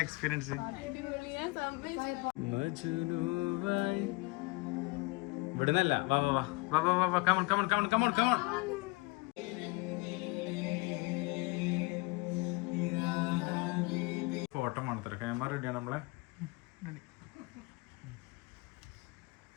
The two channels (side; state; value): right; quieter; 24.9 dB